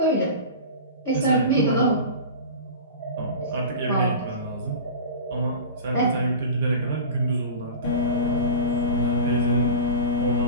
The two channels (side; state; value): both; inverted; correlation -0.32